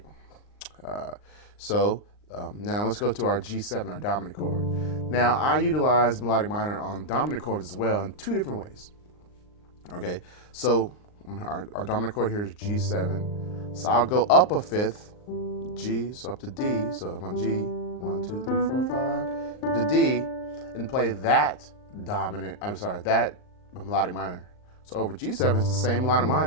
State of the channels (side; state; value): right; late; 39 ms